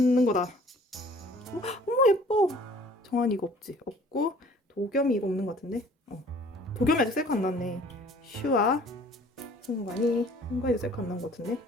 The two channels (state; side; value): normal; both; correlation 0.53